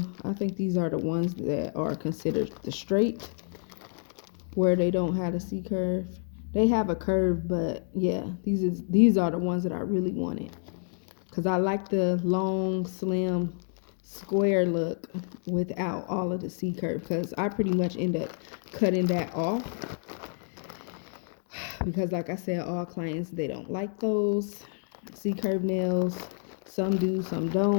think these are the ones that are considered the straight, where they don't have a C curve. They have a curve, but yeah, these are the ones that I really wanted, because I like the long, slim, square look without all of the C curve, because I pretty much end up cutting that off, because like I said, all clients, they don't like those C curve nails. Some do, some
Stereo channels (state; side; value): silent; right; 59 dB below the other